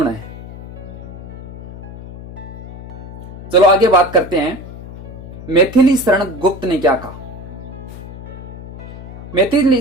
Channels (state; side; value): noise; left; hum, 13 dB below the sound